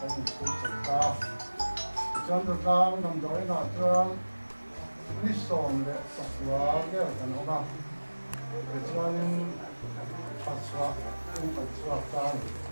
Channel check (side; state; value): both; inverted; correlation -1.00